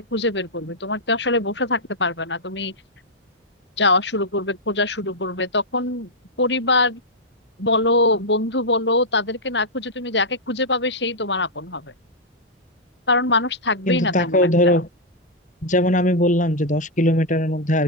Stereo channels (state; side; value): normal; both; correlation -0.05